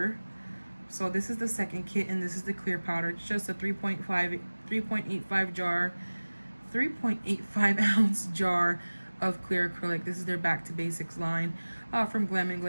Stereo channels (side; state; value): both; inverted; correlation -1.00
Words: So this is the second kit, and this is the clear powder. It's just a 3.85 ounce jar of clear acrylic. This is their Back to Basics line from Glam